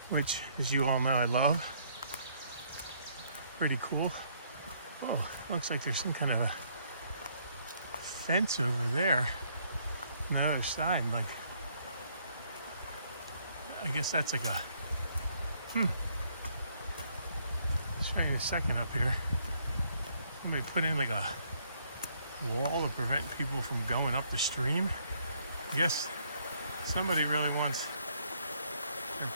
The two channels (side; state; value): both; inverted; correlation -0.68